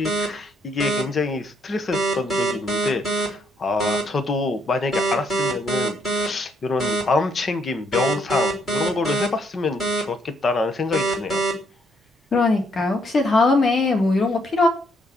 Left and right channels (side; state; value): both; normal; correlation 0.72